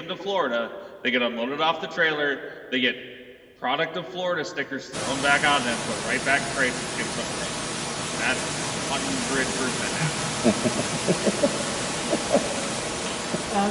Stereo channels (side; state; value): both; identical; correlation 1.00